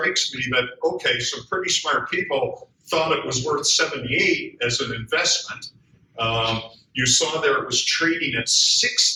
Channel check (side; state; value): both; identical; correlation 1.00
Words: me that, okay, some pretty smart people thought it was worth 78 as an investment. You saw there it was trading at